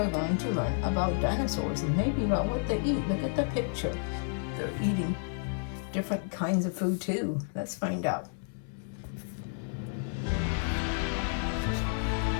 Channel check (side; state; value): right; silent; 57 dB below the other